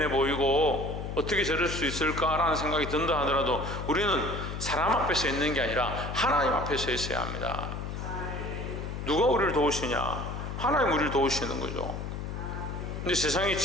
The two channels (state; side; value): noise; left; hum, 6 dB below the sound